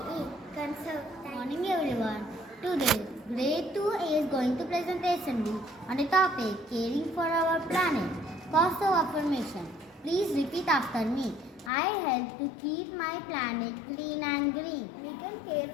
Conserve. Good morning everyone. Today, Grade IIA is going to presentation on a topic caring for our planet. Positive affirmation. Please repeat after me. I help to keep my planet clean and green. We can care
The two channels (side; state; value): right; drops out; at 11.7 s